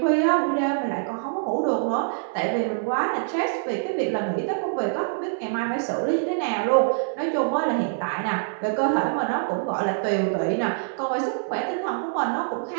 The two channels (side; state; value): left; silent; 59 dB below the other